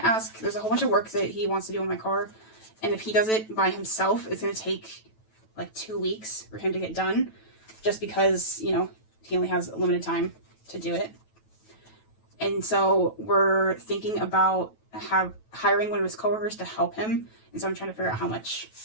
ask, there's a whole bunch of work that he wants to do on my car. And if he does it by himself, it's going to take like 2 weeks for him to get done. Just because, you know, he only has a limited time to do it. And so we're thinking about hiring one of his coworkers to help him. And so I'm trying to figure out how much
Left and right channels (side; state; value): right; late; 9.2 ms